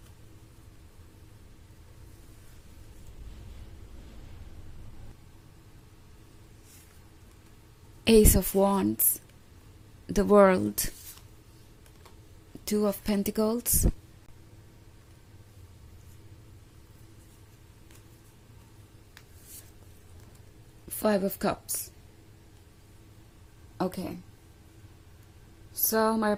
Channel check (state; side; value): identical; both; correlation 1.00